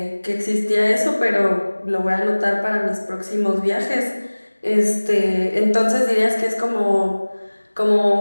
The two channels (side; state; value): both; inverted; correlation -1.00